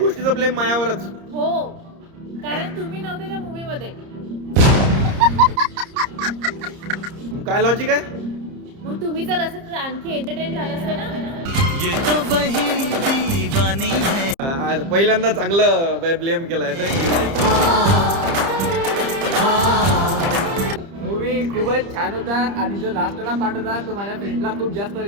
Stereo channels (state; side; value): late; left; 30 ms